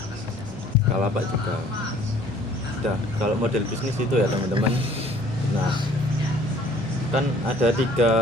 Bukalapak juga. Udah, kalau model bisnis itu ya teman-teman. Nah, kan ada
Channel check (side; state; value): both; normal; correlation 0.55